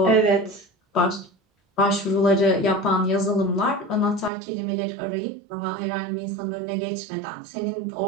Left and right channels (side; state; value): left; drops out; at 4.3 s